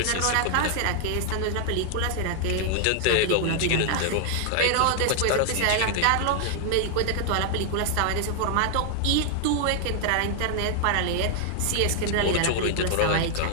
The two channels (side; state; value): both; different; correlation 0.00